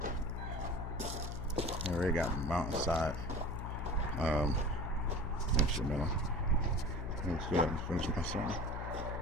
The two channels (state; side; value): noise; left; hum, 5 dB below the sound